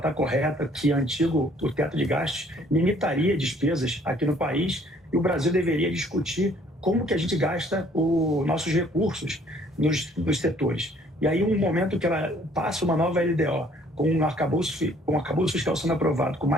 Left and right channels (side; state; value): both; normal; correlation 0.59